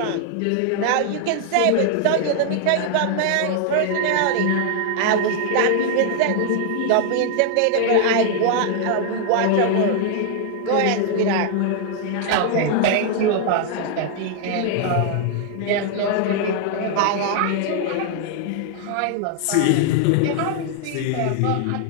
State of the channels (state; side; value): different; both; correlation 0.00